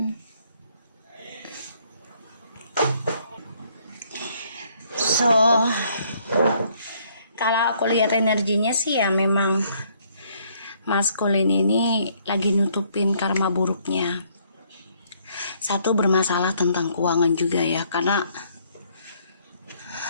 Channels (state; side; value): inverted; both; correlation -0.67